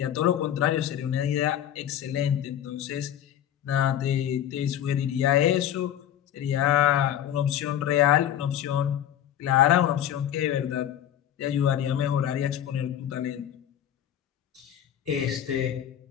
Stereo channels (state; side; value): quieter; right; 10.6 dB